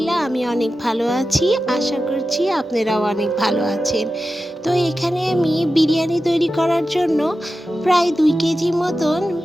আমি অনেক ভালো আছি। আশা করছি আপনারাও অনেক ভালো আছেন। তো এখানে আমি বিরিয়ানি তৈরি করার জন্য প্রায় 2 কেজি মতন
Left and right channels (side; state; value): both; normal; correlation 0.93